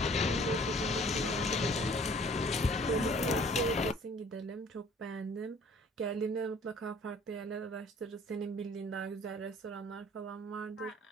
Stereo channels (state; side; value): normal; both; correlation 0.54